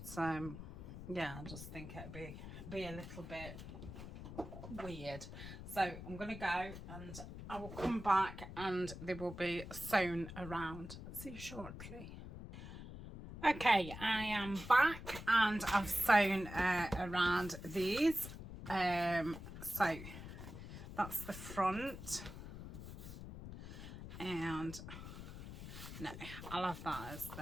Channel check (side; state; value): left; noise; rumble, 11 dB below the sound